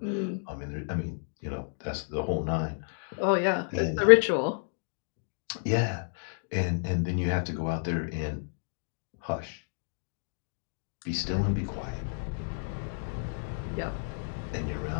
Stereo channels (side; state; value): right; silent; digital silence